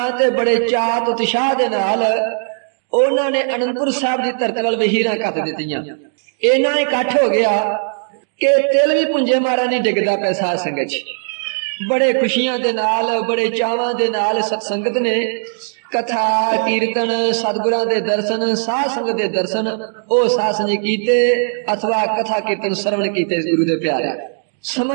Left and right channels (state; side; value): silent; left; digital silence